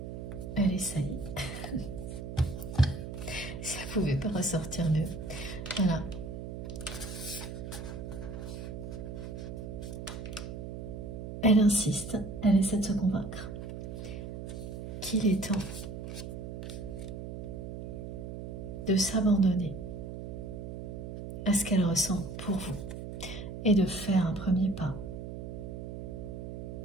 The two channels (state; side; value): noise; right; hum, 8 dB below the sound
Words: Elle essaye. Si elle ne pouvait pas ressortir mieux. Voilà. Elle insiste, elle essaie de se convaincre qu'il est temps de s'abandonner à ce qu'elle ressent pour vous et de faire un premier pas